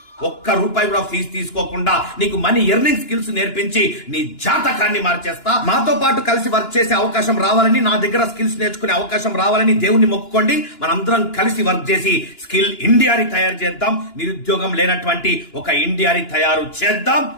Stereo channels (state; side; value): late; right; 2.9 ms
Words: ₹1 కూడా ఫీజు తీసుకోకుండా నీకు మనీ ఎర్నింగ్ స్కిల్స్ నేర్పించి నీ జాతకాన్ని మార్చేస్తా. మాతో పాటు కలిసి వర్క్ చేసే అవకాశం రావాలని, నా దగ్గర స్కిల్స్ నేర్చుకునే అవకాశం రావాలని దేవుణ్ణి మొక్కుకోండి. మనందరం కలిసి వర్క్ చేసి స్కిల్ ఇండియాని తయారు చేద్దాం. నిరుద్యోగం లేనటువంటి ఒక ఇండియాని తయారు చేద్దాం.